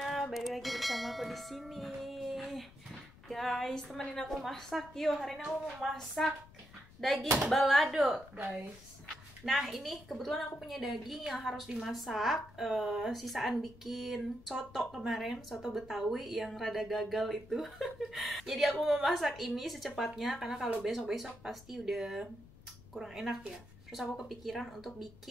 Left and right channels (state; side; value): noise; left; rumble, 21 dB below the sound